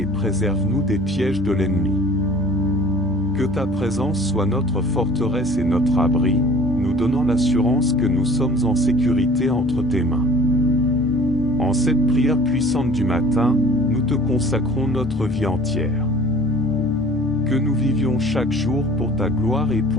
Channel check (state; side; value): noise; right; hum, 18 dB below the sound